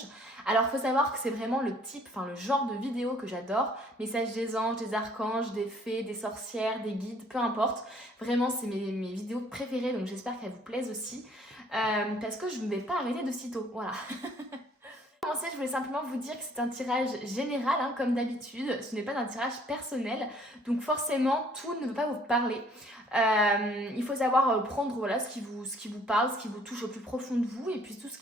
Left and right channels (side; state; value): both; normal; correlation 0.59